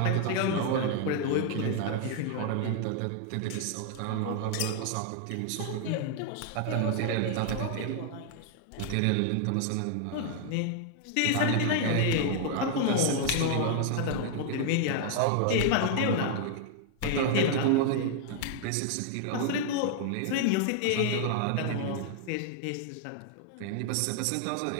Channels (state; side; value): different; both; correlation 0.00